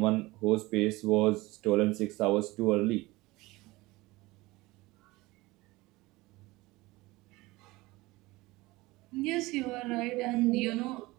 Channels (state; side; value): quieter; left; 21.0 dB